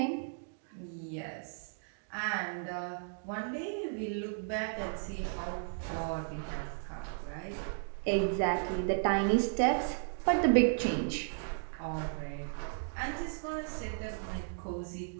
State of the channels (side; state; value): left; silent; digital silence